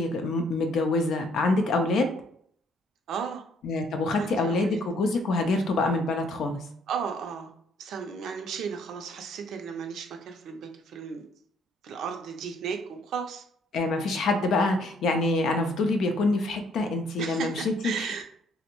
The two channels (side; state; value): both; normal; correlation 0.64